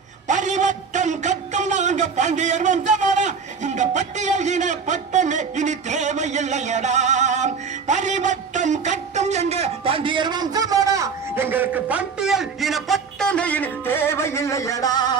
பரிவட்டம் கட்டும் நாங்க பாண்டியர் வம்சமடா. இந்த பட்டியல் இன பட்டமே இனி தேவையில்லையடா. பரிவட்டம் கட்டும் எங்க பாண்டியர் வம்சமடா. எங்களுக்கு பட்டியல் இன பட்டமே இனி தேவையில்லையடா.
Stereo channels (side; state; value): left; quieter; 5.7 dB